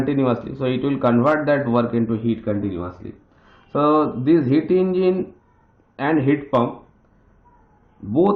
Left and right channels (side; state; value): both; identical; correlation 1.00